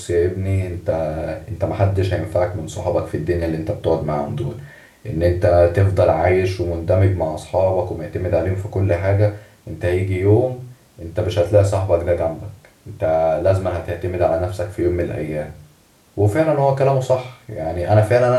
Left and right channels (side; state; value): both; identical; correlation 1.00